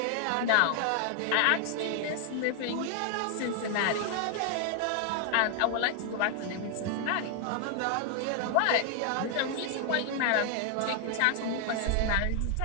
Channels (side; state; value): both; different; correlation 0.00